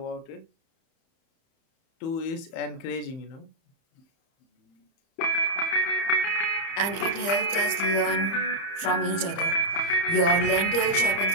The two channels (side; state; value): right; late; 30 ms